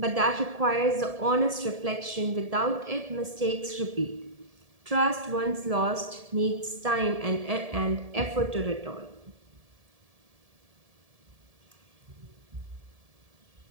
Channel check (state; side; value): late; left; 1.7 ms